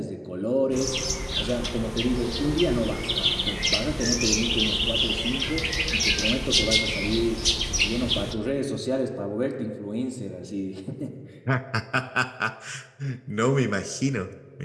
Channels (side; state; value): both; identical; correlation 1.00